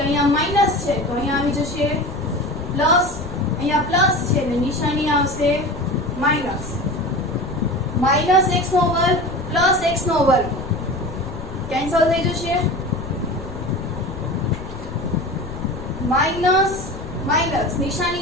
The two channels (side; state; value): left; noise; rumble, 10 dB below the sound